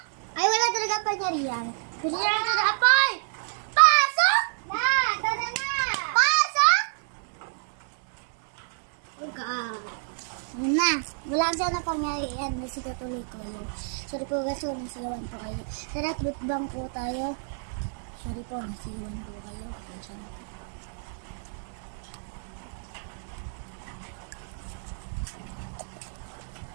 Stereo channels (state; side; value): silent; left; 59 dB below the other